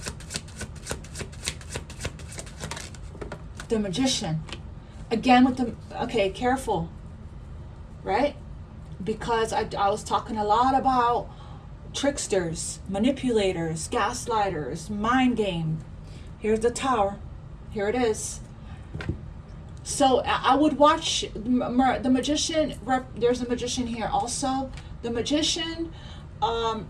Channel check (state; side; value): identical; both; correlation 1.00